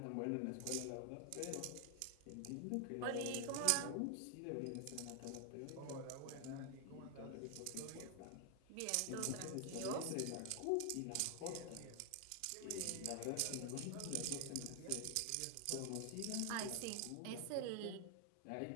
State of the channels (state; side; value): different; both; correlation 0.00